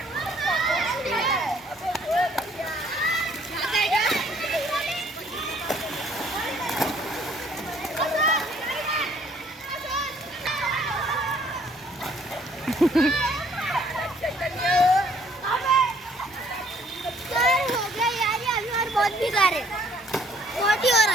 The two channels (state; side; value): normal; both; correlation 0.61